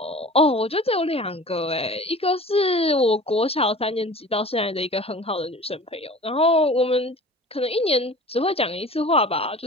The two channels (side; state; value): both; normal; correlation 0.42